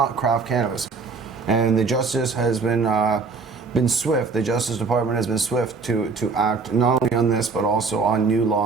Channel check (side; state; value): left; quieter; 4.6 dB